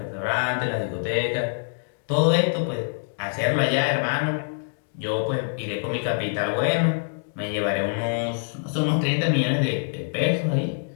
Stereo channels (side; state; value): right; silent; digital silence